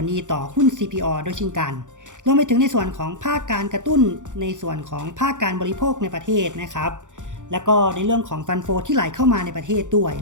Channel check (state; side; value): late; left; 0.86 ms